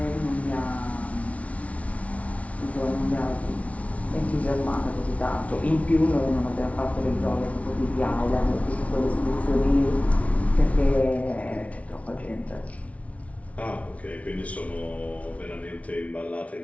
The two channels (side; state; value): right; late; 0.065 ms